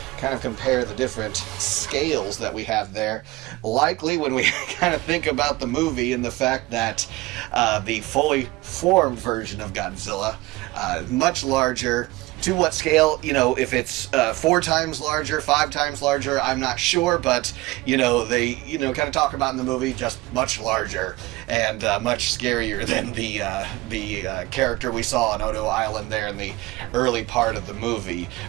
kind of compare the different scales that we have there. Likely when we kind of think about the movie and the fact that the fully formed version of Godzilla, much larger. To what scale, if it's 4 times larger, 5 times larger, I'm not sure, but, they, kind of talk about in the movie just much larger and much scarier than the character we saw on Odo Island there in the early part of the movie.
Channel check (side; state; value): left; quieter; 20.1 dB